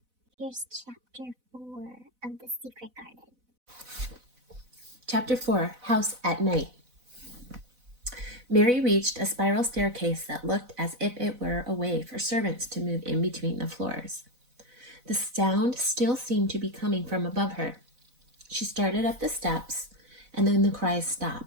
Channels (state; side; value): late; left; 4.0 ms